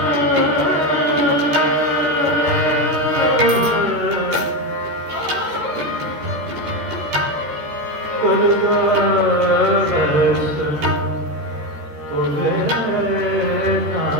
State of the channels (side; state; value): left; late; 14 ms